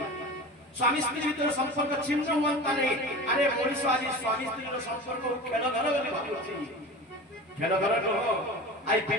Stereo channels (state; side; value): normal; both; correlation 0.33